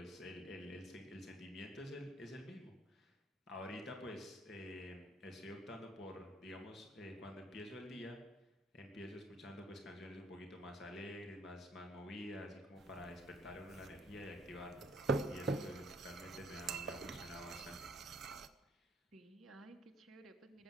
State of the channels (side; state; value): both; normal; correlation 0.63